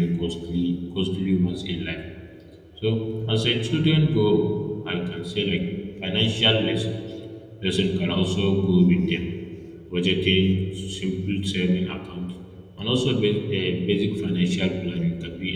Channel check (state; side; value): identical; both; correlation 1.00